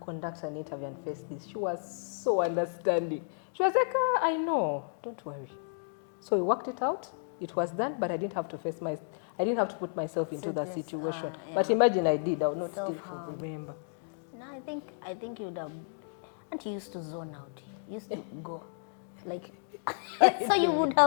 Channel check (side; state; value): right; silent; digital silence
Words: an interview and face this. She was so understanding. She was like, I know, don't worry. So we worked it out. It was done, but I didn't have to I didn't have to put myself into that situation. Yeah. But imagine I did, I would not still remember. No, I think you would have, and you used to zone out. You used to go, like, so you would